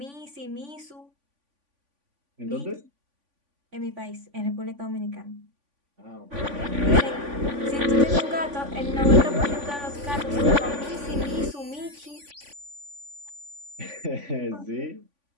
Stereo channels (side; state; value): left; late; 3.5 ms